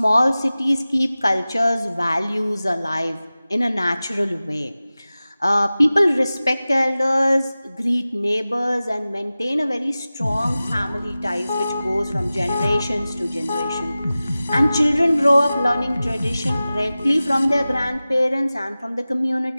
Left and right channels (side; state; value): both; inverted; correlation -0.96